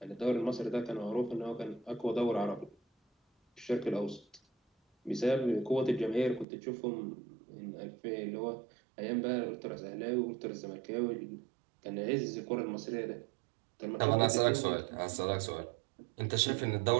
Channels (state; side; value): drops out; left; at 6.5 s